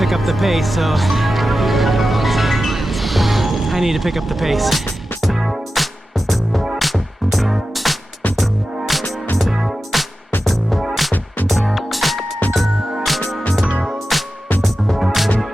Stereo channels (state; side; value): normal; both; correlation 0.93